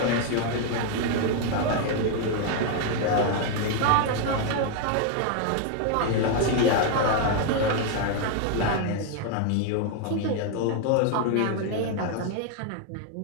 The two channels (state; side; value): different; both; correlation 0.01